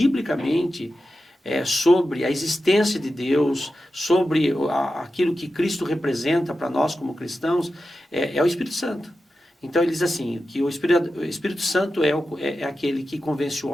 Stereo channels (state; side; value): normal; both; correlation 0.92